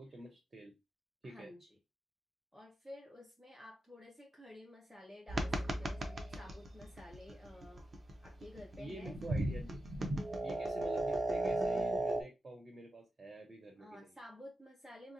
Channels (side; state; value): both; normal; correlation 0.89